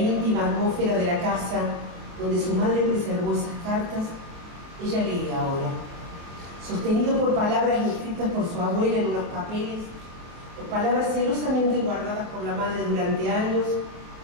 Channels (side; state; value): left; late; 24 ms